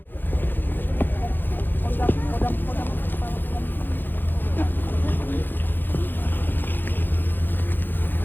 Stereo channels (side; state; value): right; late; 0.093 ms